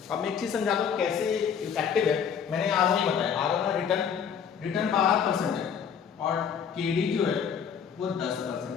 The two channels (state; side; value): quieter; right; 7.5 dB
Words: अब मैं एक चीज समझाता हूं कैसे इफेक्टिव है। मैंने आरओआई बताया, आरओआई रिटर्न 12% है और केडी जो है वो 10%